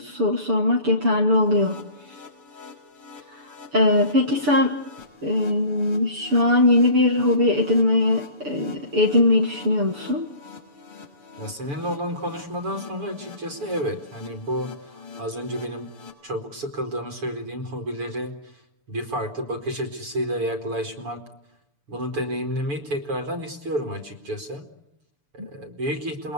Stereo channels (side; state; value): left; late; 6.9 ms